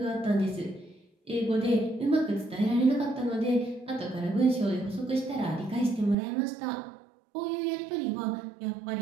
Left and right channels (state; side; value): drops out; left; at 6.2 s